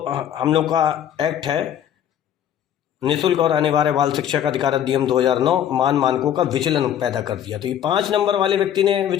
हम लोग का एक्ट है निःशुल्क और अनिवार्य बाल शिक्षा का अधिकार अधिनियम 2009 मानकों का विचलन पैदा कर दिया। तो ये 5 नंबर वाले व्यक्ति ने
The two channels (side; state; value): right; quieter; 10.0 dB